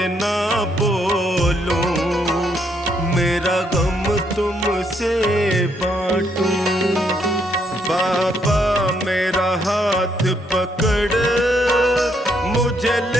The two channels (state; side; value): normal; both; correlation 0.73